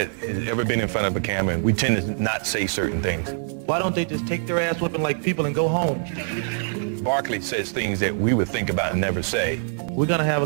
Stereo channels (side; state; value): left; silent; digital silence